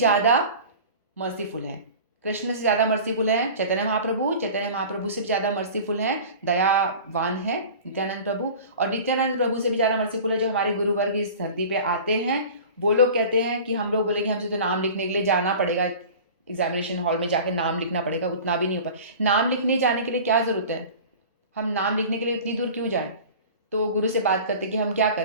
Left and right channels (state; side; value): inverted; both; correlation -0.39